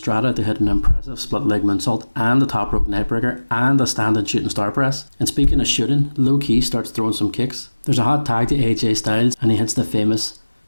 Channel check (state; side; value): inverted; both; correlation -1.00